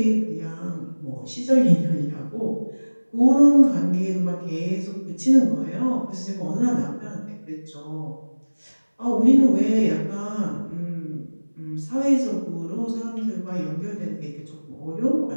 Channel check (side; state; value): both; inverted; correlation -1.00